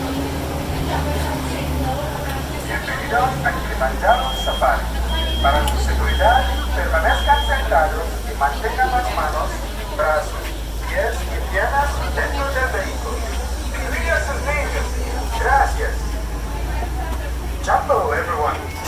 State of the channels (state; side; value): identical; both; correlation 1.00